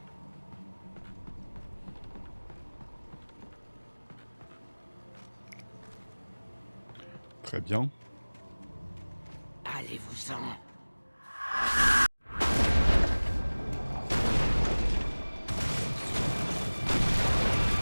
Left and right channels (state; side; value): inverted; both; correlation -1.00